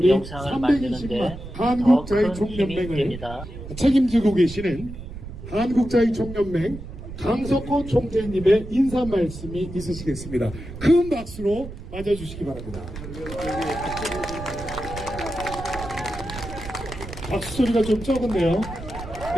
영상을 만드는데 320만 더 한국자의 큰 힘이 총연맹을 됩니다. 책임지고 계시는 한국자의 총연맹 강석호 총재님의 인사 말씀이 있으시겠습니다. 큰 박수로 맞아주시기 바랍니다. 박수 소리가 좀 적은데요.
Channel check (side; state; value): right; noise; rumble, 12 dB below the sound